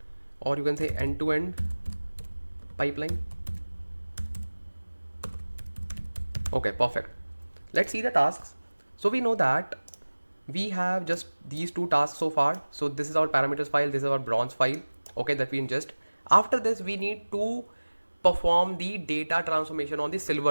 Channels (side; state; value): both; inverted; correlation -1.00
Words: or you can say end-to-end pipeline. Okay, perfect. Let's see the tasks. So we know that we have just these two tasks so far. So this is our parameters file, this is our bronze file, okay, that we ingest. After this, we need to perform the data transformation on the